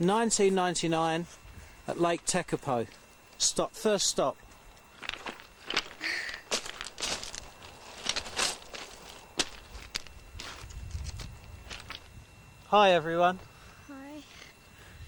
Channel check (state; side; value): identical; both; correlation 1.00